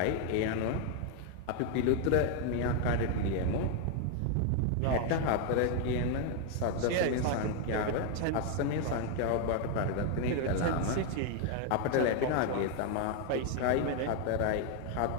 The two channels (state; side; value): different; both; correlation 0.00